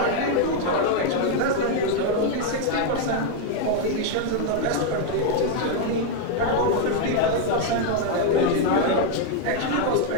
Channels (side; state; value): both; different; correlation 0.00